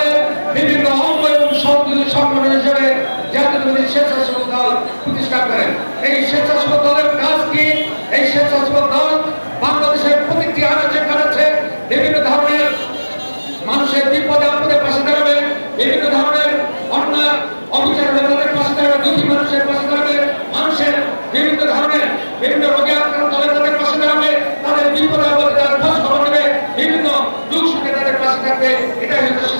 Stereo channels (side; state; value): both; inverted; correlation -1.00